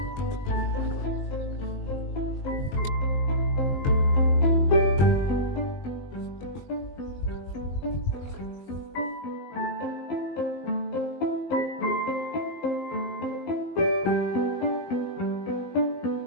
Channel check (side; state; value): right; late; 21 ms